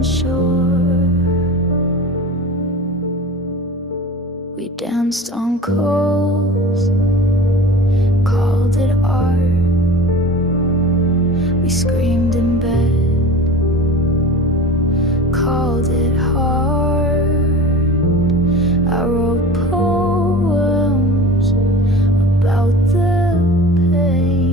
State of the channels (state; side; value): normal; both; correlation 0.36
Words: sure. We danced on coals, called it art. We screamed in bed, called it hard. I wrote poems about the